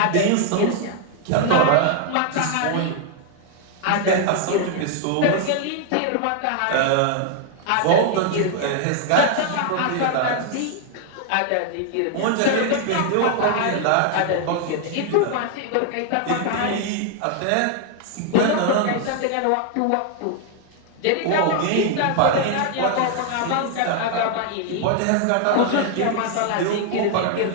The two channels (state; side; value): different; both; correlation 0.00